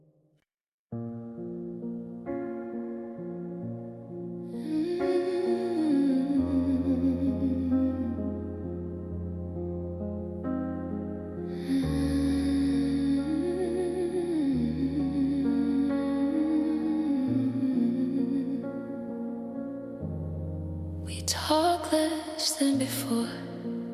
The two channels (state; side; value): identical; both; correlation 1.00